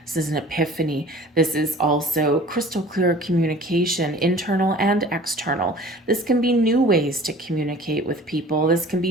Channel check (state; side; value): normal; both; correlation 0.46